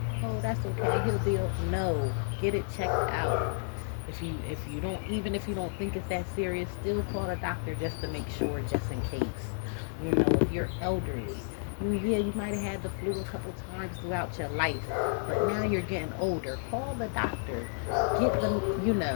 Oh, that's okay. He'll be okay. No, get it checked out. If you don't, even if you don't think it's that serious, still call a doctor just to make sure, just in case. You know, if you're elderly, yeah, you might have had the flu a couple times throughout your life, but now you're getting older. Call the doctor. Get them,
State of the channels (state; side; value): silent; right; digital silence